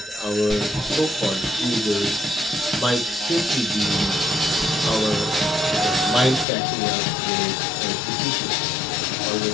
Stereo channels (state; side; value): drops out; right; at 6.5 s